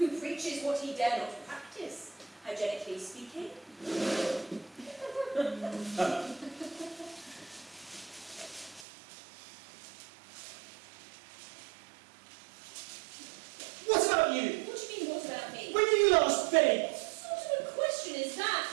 preaches what he dare not practice, hygienically speaking. What about you? What do you mean, what about me? When did you last bathe? What sort of a question is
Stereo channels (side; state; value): left; drops out; at 8.8 s